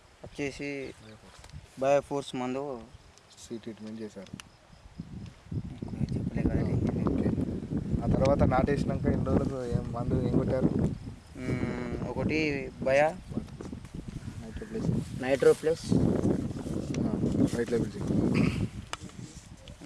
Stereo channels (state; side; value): identical; both; correlation 1.00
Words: వచ్చేసి బయోఫోర్స్ మందు సీ ట్రీట్మెంట్ చేశారు. చెప్పలే కదా. ఓకే, ఆ తర్వాత నాటేసినాక ఎన్ని రోజులకు ఏం మందు ఏం కొట్టారు? ఒకటి బయా నైట్రో ప్లస్ రైట్ లెవెల్